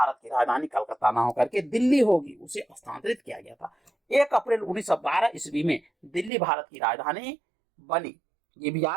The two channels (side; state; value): left; drops out; at 6.3 s